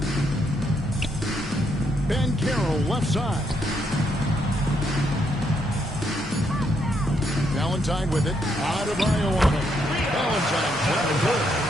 Banchero left side. Valentine with it. Adebayo on it. Valentine shot is good.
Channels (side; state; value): both; normal; correlation 0.76